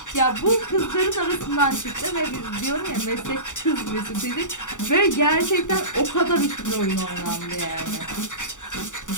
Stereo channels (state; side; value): late; right; 0.86 ms